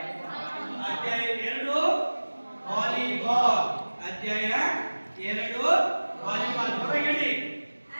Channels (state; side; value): inverted; both; correlation -1.00